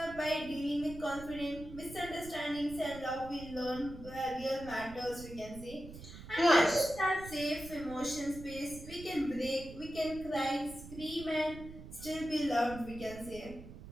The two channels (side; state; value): right; noise; rumble, 14 dB below the sound